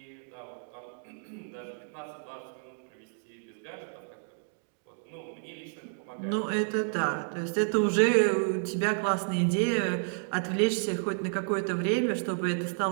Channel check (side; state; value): left; silent; digital silence